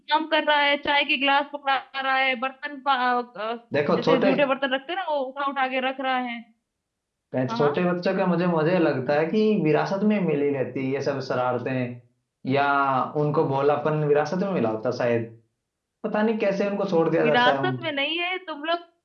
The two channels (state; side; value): identical; both; correlation 1.00